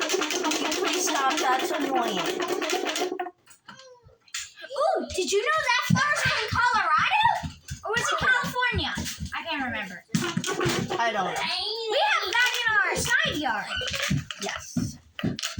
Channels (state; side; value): identical; both; correlation 1.00